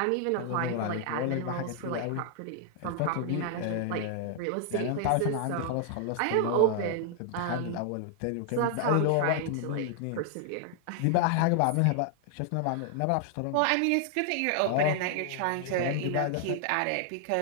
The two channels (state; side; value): different; both; correlation 0.00